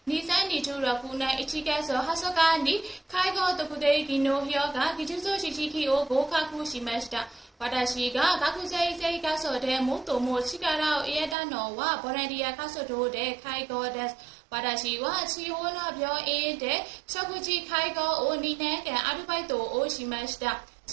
2026年1月20日に介護特定技能評価技術試験を合格しました。私が学生生活で最も力を入れたのはボランティア活動で介護です。私は地方の病院で食事介護を2年間アルバイトをしました。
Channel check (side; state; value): left; drops out; at 11.4 s